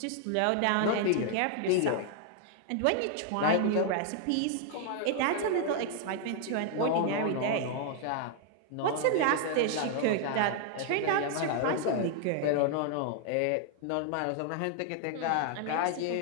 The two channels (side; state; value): both; different; correlation 0.00